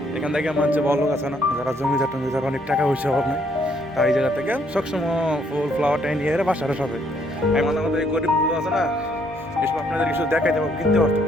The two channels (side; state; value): both; normal; correlation 0.69